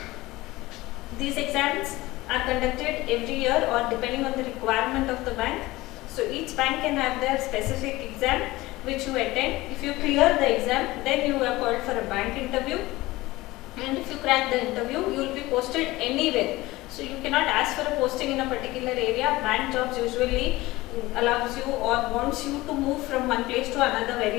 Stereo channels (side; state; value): right; quieter; 19.3 dB